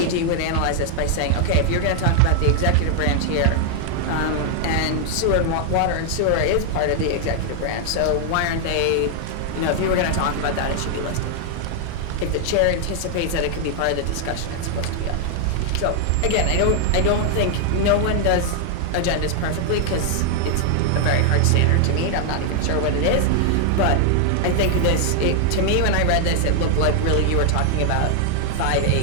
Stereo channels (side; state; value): both; different; correlation 0.00